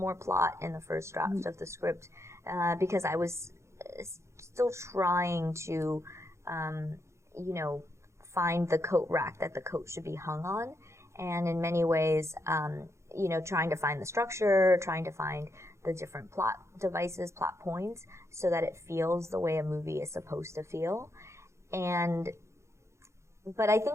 plot in the first draft of the script because I was still trying to, you know, find the coat rack that the coat should be hung on. And in many ways, you know, trying to find the structure, trying to find the different plot devices, plot points, so that it feels the way a movie is supposed to feel. But I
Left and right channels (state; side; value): late; left; 0.14 ms